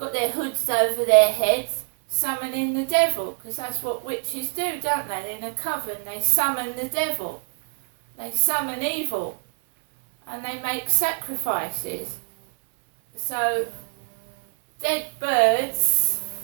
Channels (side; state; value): left; silent; 62 dB below the other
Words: their hoods over their heads, summoning the devil, because that's what witches do, don't they? In a coven, they summon the devil. They summon evil. And they make sacrifices. So, dead birds,